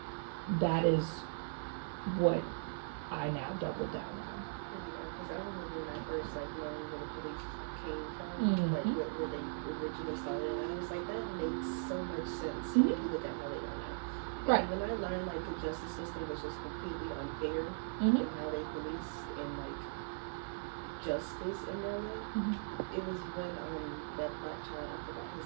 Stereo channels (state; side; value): silent; left; digital silence